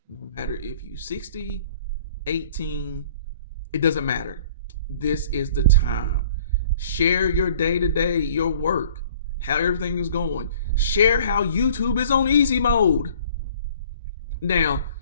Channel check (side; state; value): both; inverted; correlation -0.52